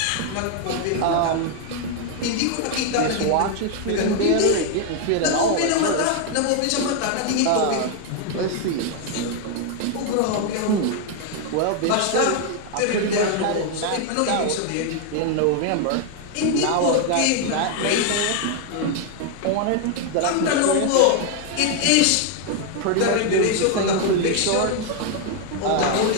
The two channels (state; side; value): different; both; correlation 0.01